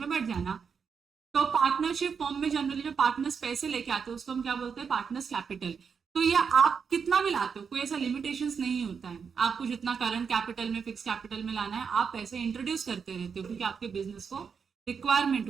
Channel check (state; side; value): quieter; left; 6.3 dB